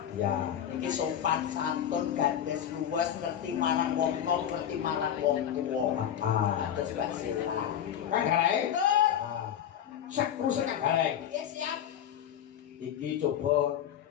Ya. Iki sopan santun gandes luwes ngerti marang wong nom ngerti marang wong tuwa. Terus Pak Sila. Kang Gareng. Sak krusek Kang Gareng. Iya siap. Iki coba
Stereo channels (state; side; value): quieter; right; 9.8 dB